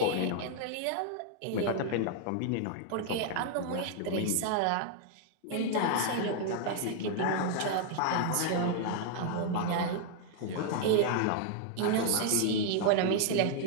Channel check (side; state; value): both; different; correlation 0.00